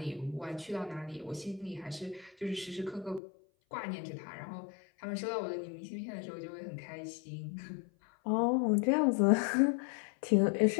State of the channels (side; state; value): right; drops out; at 3.2 s